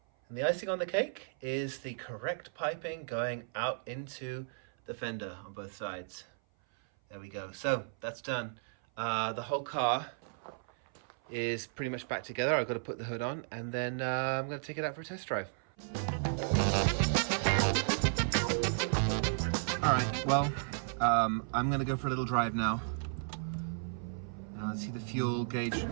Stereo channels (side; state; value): left; silent; 55 dB below the other